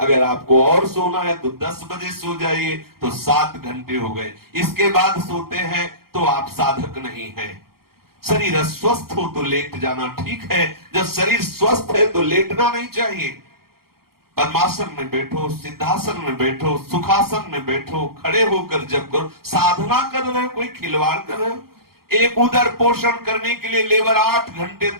आपको और सोना है तो 10 बजे सो जाइए, तो 7 घंटे हो गए। इसके बाद सोते हैं तो आप साधक नहीं हैं। शरीर अस्वस्थ हो तो लेट जाना ठीक है, जब शरीर स्वस्थ है तो लेटना नहीं चाहिए। पद्मासन में बैठो, सिद्धासन में बैठो, सुखासन में बैठो, खड़े होकर जब करो, साधना कर रहे हो, कोई खिलवाड़ कर रहे हो। एक उदर पोषण करने के लिए लेबर 8 घंटे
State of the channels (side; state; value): left; late; 0.94 ms